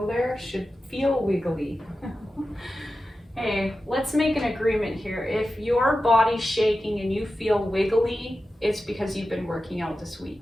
there. Should feel wiggly. Hey, let's make an agreement here. If your body's shaking and you feel wiggly, it's because you've been working out this week,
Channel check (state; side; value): normal; both; correlation 0.93